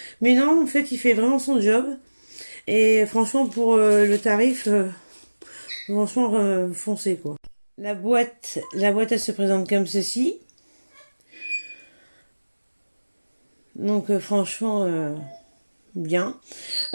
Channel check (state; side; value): inverted; both; correlation -1.00